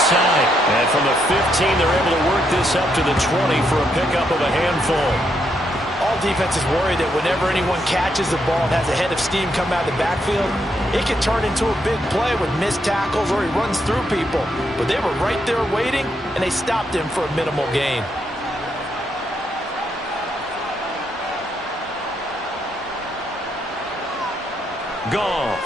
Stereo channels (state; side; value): normal; both; correlation 0.78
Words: And from the 15, they're able to work this up to the 20 for a pickup of a handful. All defenses worry that whenever anyone catches the ball and has a head of steam come out of the backfield, it can turn into a big play with missed tackles or he runs through people. But they were right there waiting, and they stopped him for a minimal gain.